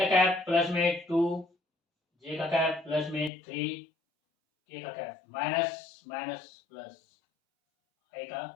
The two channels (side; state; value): right; drops out; at 3.3 s